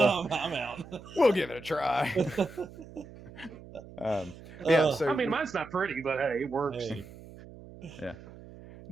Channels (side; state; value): right; noise; hum, 17 dB below the sound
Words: I'm out. we'll give it a try. Yeah. I So mean, mine's not pretty, but hey, it works. Hey, yeah.